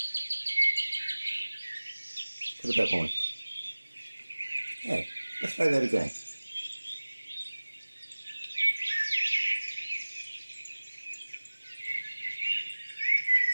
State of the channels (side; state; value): both; inverted; correlation -1.00